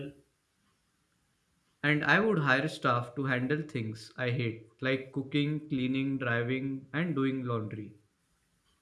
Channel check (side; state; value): both; identical; correlation 1.00